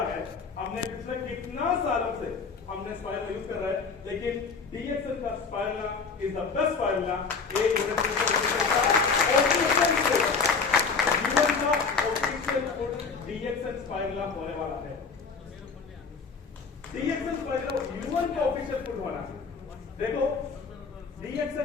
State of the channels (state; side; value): quieter; right; 5.0 dB